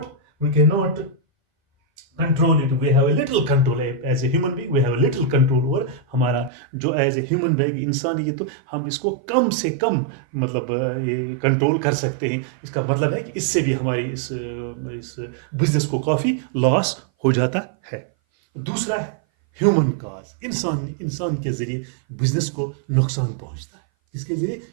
control it. We have a little control as a human being. We have a little control over हमारा जो as a human being इंसान, ये तो हम इसको कम से कम मतलब कंट्रोल कर सकते हैं. इसका मतलब है कि इससे भी हमारी इस बिजनेस को काफी लॉस हो जाता है. दूसरा है ह्यूमन कॉज. इंसान के जरिए बिजनेस को नुकसान पहुंचता है. इसके जरिए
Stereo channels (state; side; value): drops out; left; at 6.5 s